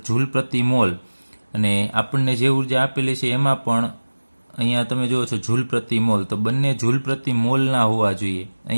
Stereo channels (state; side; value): inverted; both; correlation -1.00